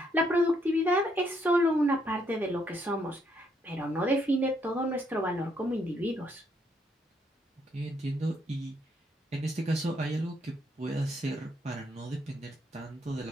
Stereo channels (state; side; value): normal; both; correlation 0.73